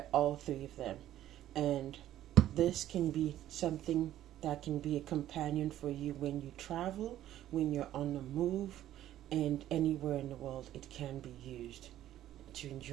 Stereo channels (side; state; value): left; quieter; 12.8 dB